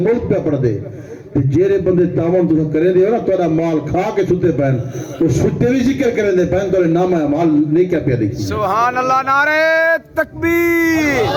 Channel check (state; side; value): identical; both; correlation 1.00